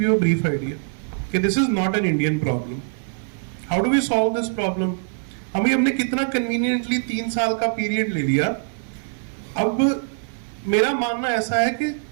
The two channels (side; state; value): left; silent; digital silence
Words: you a brief idea कि this is not an Indian problem. How do we solve this problem? हमने कितना कन्वीनियंटली 3 साल का पीरियड ले लिया। अब मेरा मानना ऐसा है कि